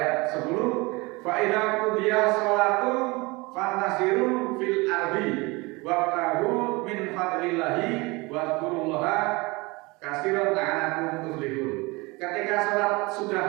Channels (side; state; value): left; quieter; 24.9 dB